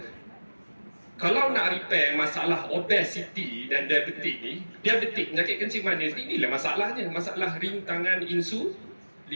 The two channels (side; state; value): both; inverted; correlation -1.00